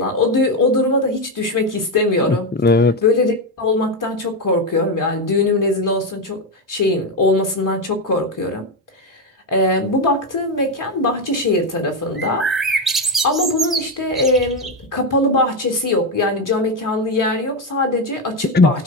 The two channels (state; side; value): normal; both; correlation 0.09